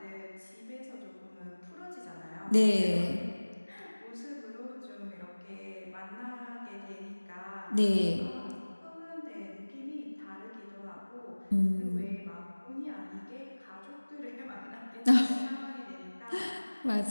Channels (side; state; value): both; inverted; correlation -1.00